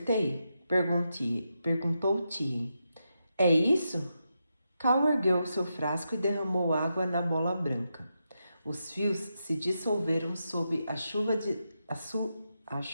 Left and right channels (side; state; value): both; inverted; correlation -0.86